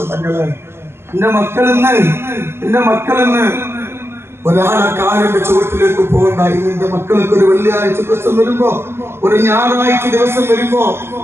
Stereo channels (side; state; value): left; late; 0.12 ms